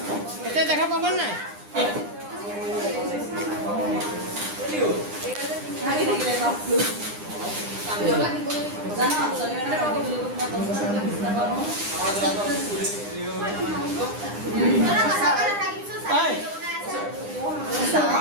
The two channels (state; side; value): late; left; 9.8 ms